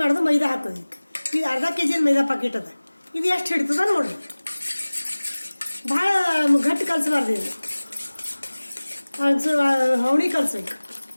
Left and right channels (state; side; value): inverted; both; correlation -1.00